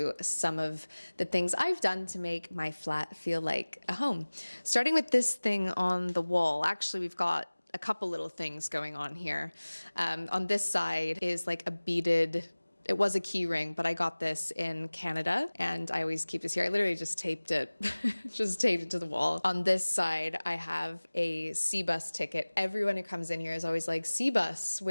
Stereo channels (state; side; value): inverted; both; correlation -1.00